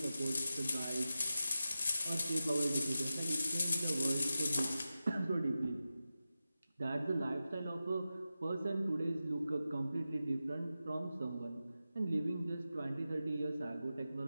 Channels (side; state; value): both; inverted; correlation -0.92